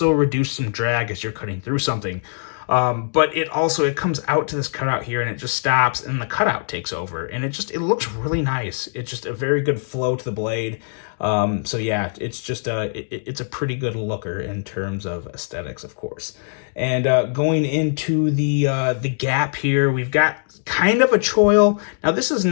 reduce some drag as you're cutting through something. But it comes out to this cutout here, and it just stops, and the cutout takes over, and it looks really nice. It's just a very good flow to the blade. So yeah, it's just it's a pretty good looker in terms of aesthetics, of course. And going into the gap here, we've got kind of a choil. Now this is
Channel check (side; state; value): right; silent; digital silence